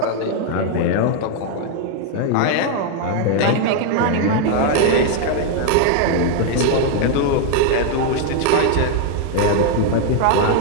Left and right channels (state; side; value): different; both; correlation 0.00